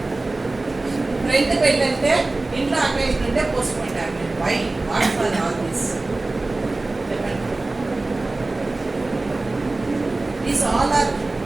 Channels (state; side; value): quieter; left; 3.1 dB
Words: ఫ్రెండ్ పెళ్ళంటే ఇంట్లో అకేషన్ ఉంటే postpone tablet. Why? What for all this? చెప్పండి. దీస్ ఆల్ ఆర్,